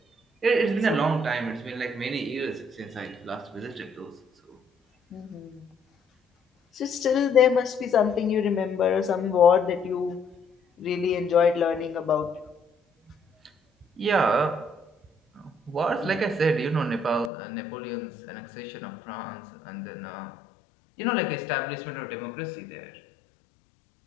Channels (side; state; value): right; drops out; at 17.3 s